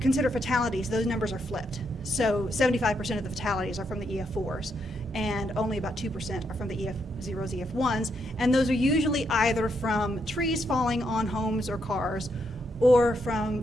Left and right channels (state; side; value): normal; both; correlation 0.78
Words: fatalities, those numbers are flipped. So 75% of the fatalities are from the EF4s, and only about 2% are from the EF0s, EF1s, and those are usually either from trees falling on homes or cars, or from